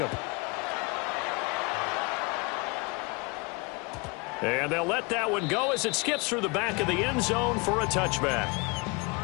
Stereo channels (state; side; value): quieter; right; 28.6 dB